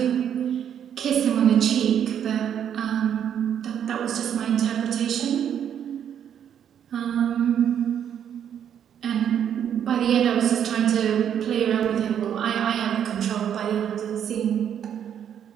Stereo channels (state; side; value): quieter; left; 9.1 dB